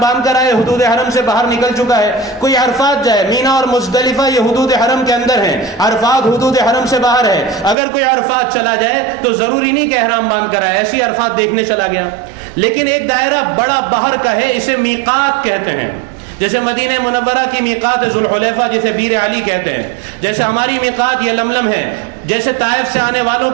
باندھ کر آئے, حدود حرم سے باہر نکل چکا ہے. کوئی عرفات جائے, مینا اور مزدلفہ یہ حدود حرم کے اندر ہیں, عرفات حدود حرم سے باہر ہے. اگر کوئی عرفات چلا جائے تو ضروری نہیں کہ احرام باندھ کر آئے, ایسی عرفات دیکھنے چلا گیا. لیکن ایک دائرہ بڑا باہر کا ہے, اسے میقات کہتے ہیں. جیسے مدینہ منورہ کی میقات ذوالحلیفہ جسے بیر علی کہتے ہیں, جیسے ہماری میقات یہ لملم ہے, جیسے طائف سے آنے والوں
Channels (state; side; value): drops out; left; at 7.8 s